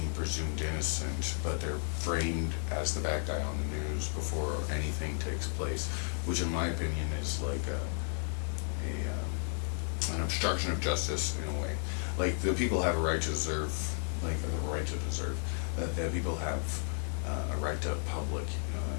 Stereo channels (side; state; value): right; silent; 55 dB below the other